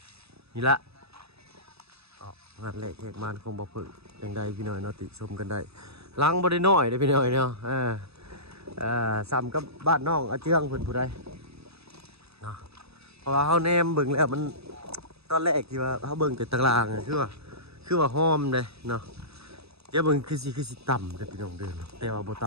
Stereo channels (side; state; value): left; late; 0.78 ms